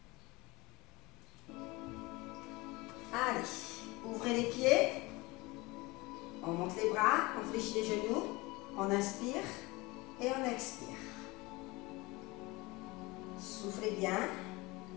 Allez, ouvrez les pieds. On monte les bras, on fléchit les genoux. On inspire et on expire. Soufflez bien.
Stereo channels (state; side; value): quieter; right; 23.1 dB